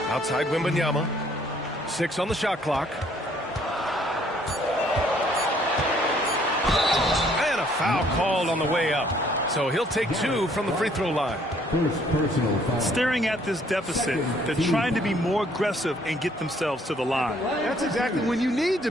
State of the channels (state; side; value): normal; both; correlation 0.63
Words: Outside Wembanyama. 6 on the shot clock. And a foul called on the way up. So he'll take 2 from the free throw line. Staring at this deficit, they're trying to be more aggressive and get themselves to the line. That's exactly when you need to